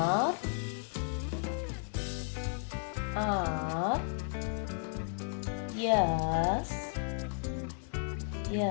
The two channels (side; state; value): right; silent; 55 dB below the other